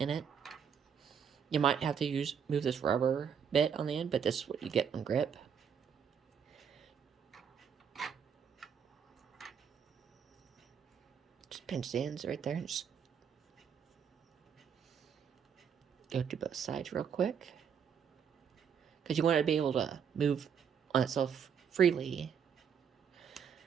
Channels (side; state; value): left; quieter; 7.5 dB